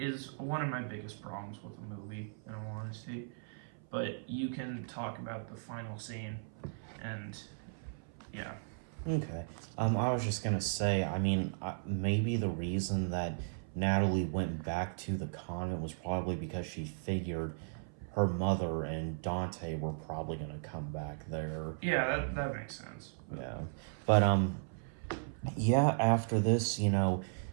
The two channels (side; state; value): left; silent; 54 dB below the other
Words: one of my biggest problems with the movie, in all honesty. But you can talk about the final scene, and yeah. Okay. I was just gonna say, I mean, maybe the reason that Natalie went back to the convent was probably because she figured her mother and Dante were probably gonna come back there. Yeah, that makes sense. Yeah. But yeah, after this,